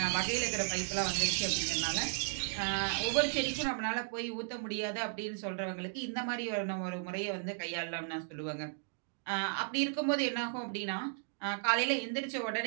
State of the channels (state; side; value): silent; left; digital silence